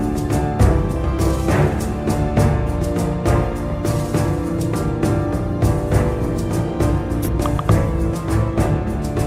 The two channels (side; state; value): both; identical; correlation 1.00